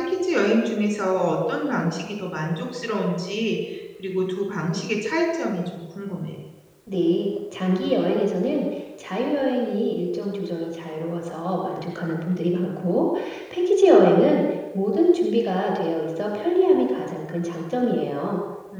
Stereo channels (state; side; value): identical; both; correlation 1.00